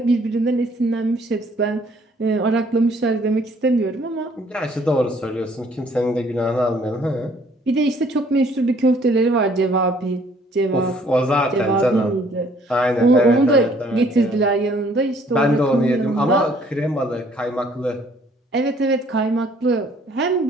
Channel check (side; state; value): both; normal; correlation 0.61